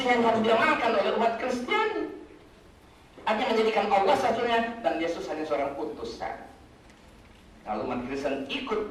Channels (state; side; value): identical; both; correlation 1.00